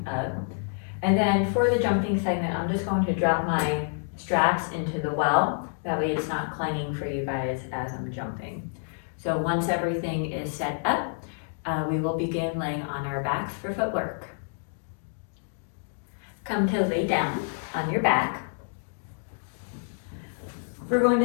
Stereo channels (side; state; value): right; silent; digital silence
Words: up. And then for the jumping segment, I'm just going to drop my straps into the well. That way it's not clanging for you guys as I'm jumping. So once everything is set up, we will begin laying on our backs for footwork. Come to lay down on your back. We're going